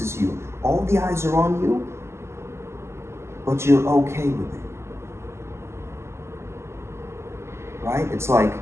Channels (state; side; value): late; left; 0.13 ms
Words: you, all the eyes are on you, but you're okay with it, right? It's like